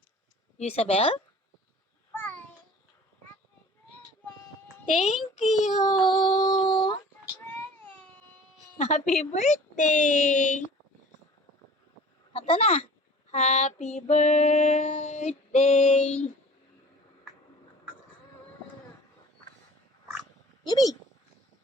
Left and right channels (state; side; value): normal; both; correlation 0.45